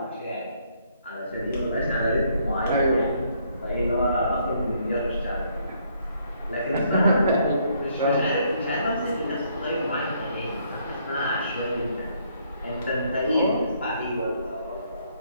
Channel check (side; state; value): both; inverted; correlation -0.69